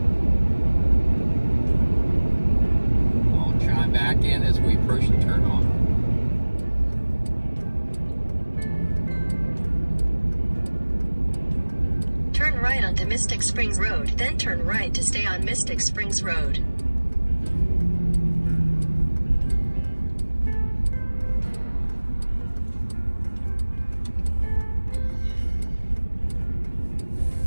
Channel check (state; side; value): inverted; both; correlation -1.00